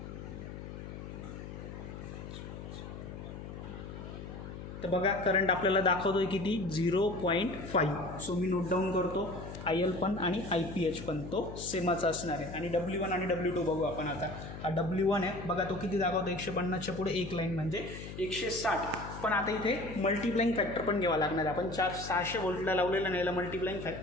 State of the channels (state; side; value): noise; left; hum, 10 dB below the sound